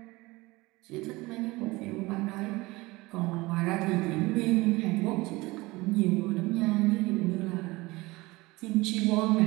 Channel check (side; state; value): left; quieter; 21.7 dB